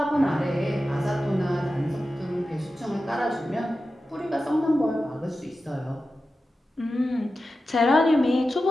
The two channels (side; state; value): both; normal; correlation 0.93